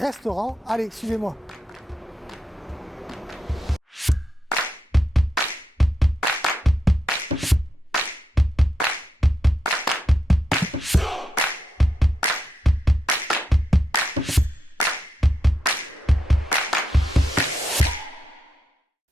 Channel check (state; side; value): normal; both; correlation 0.84